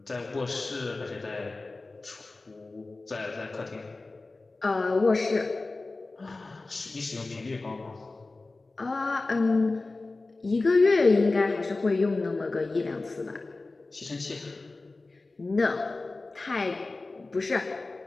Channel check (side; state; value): right; quieter; 3.4 dB